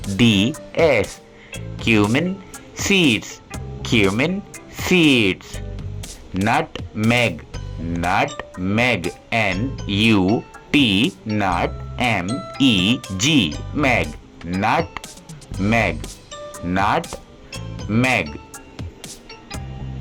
Cumin seeds. Cumin seeds. Nutmeg. Nutmeg. NUT. NUTMEG. Meg. Nutmeg. Nutmeg.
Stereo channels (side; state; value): both; identical; correlation 1.00